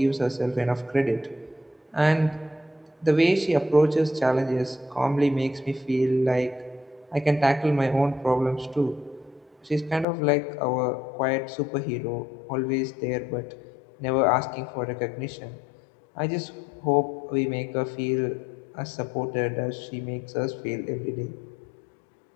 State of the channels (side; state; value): right; drops out; at 10.1 s